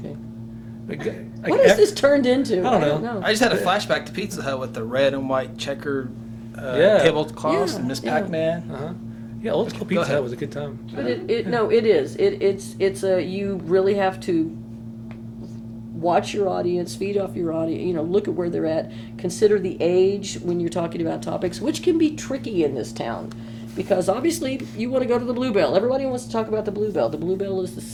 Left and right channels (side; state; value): both; identical; correlation 1.00